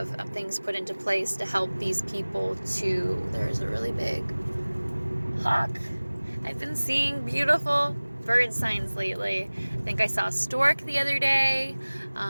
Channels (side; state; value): both; inverted; correlation -1.00